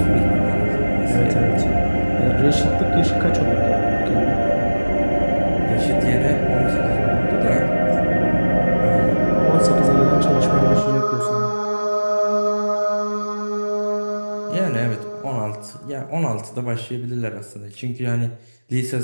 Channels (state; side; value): inverted; both; correlation -1.00